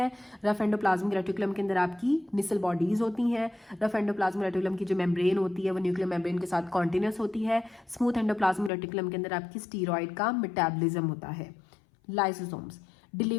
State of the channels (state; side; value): drops out; right; at 8.7 s